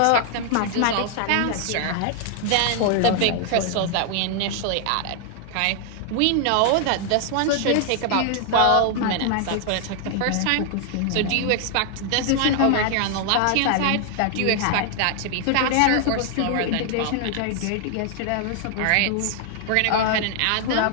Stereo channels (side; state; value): both; different; correlation 0.00